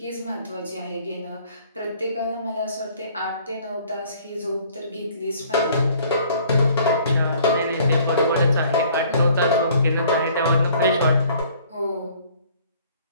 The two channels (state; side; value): inverted; both; correlation -0.56